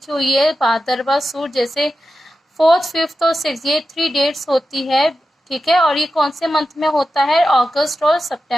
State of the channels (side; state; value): both; normal; correlation 0.92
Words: हुई है भादरवा सूद, जैसे 4th, 5th और 6th, ये 3 डेट्स होती है, ठीक है। और ये कौन से मंथ में होता है? अगस्त और